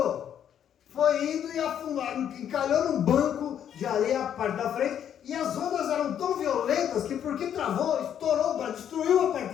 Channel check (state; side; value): quieter; right; 9.4 dB